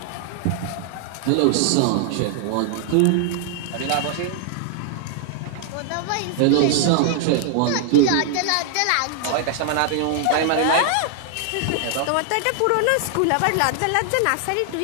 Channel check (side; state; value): both; different; correlation 0.00